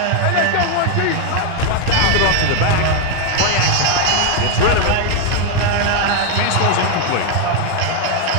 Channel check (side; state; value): both; different; correlation 0.01